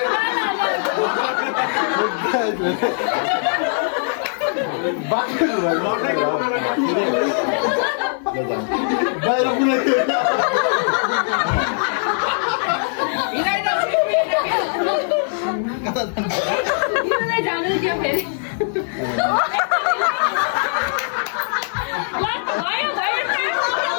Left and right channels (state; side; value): silent; right; 56 dB below the other